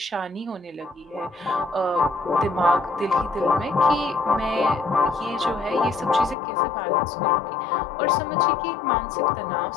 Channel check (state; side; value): drops out; right; at 6.4 s